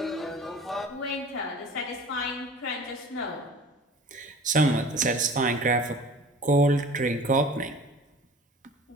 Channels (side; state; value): both; normal; correlation 0.42